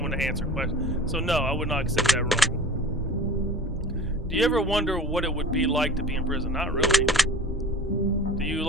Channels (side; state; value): both; normal; correlation 0.39